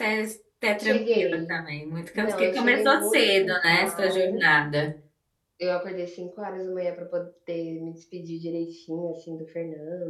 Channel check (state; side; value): identical; both; correlation 1.00